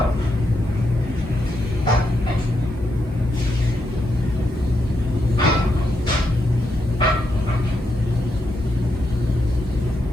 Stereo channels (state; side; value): normal; both; correlation 0.82